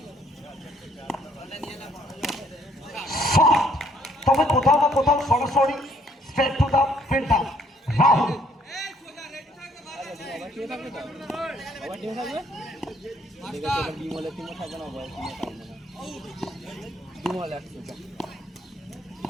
তবে কোথাও না কোথাও সরাসরি straight to the filter Rahul.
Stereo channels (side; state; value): both; normal; correlation 0.65